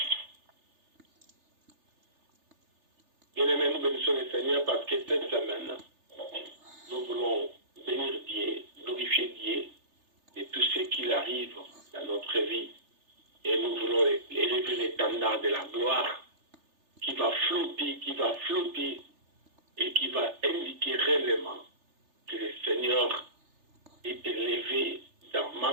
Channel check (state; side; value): late; left; 3.3 ms